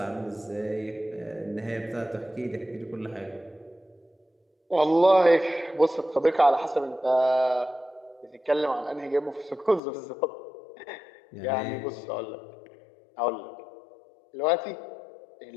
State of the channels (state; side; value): drops out; right; at 9.8 s